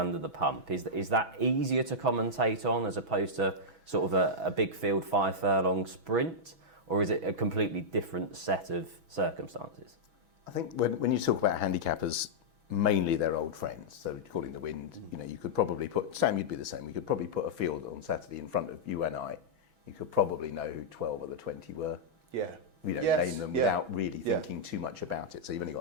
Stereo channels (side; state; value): left; late; 6.1 ms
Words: the pump, is that easier to commentate on as opposed to sort of a big field 5 furlong sprint, or is it a completely different set of circumstances? I think when you talk about handicappers, mainly they're old friends. So calling the wind, you could probably put, Sam, you'd be the same. We could probably put a field on Saturday in front of you and I. You could probably know who 12 or the 20 were. Name them without really thinking too much about it. So you've only got